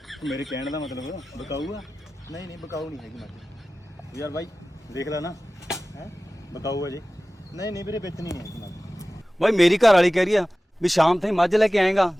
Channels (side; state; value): both; normal; correlation 0.97